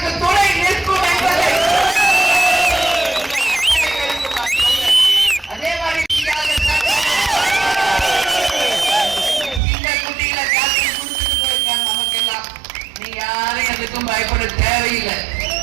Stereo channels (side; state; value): left; drops out; at 9.6 s